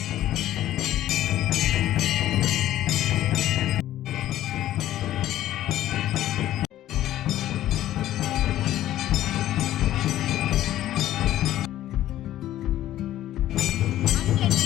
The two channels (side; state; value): right; quieter; 13.4 dB